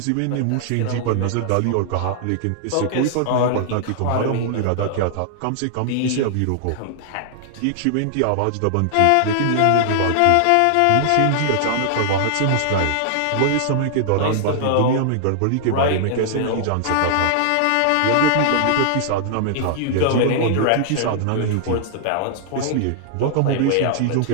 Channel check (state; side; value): different; both; correlation -0.01